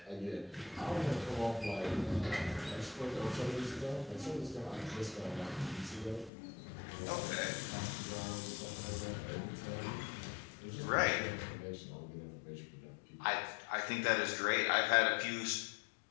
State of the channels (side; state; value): right; drops out; at 6.3 s